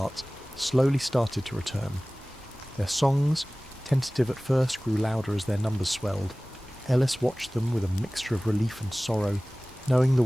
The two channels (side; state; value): both; normal; correlation 0.98